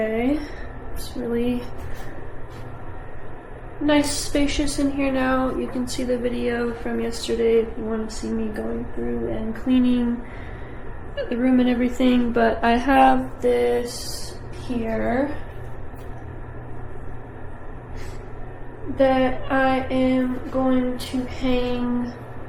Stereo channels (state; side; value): identical; both; correlation 1.00